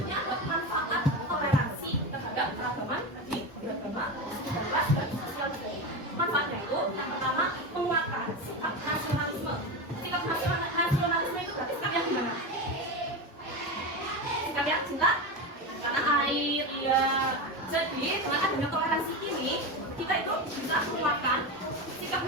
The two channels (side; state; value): both; normal; correlation 0.20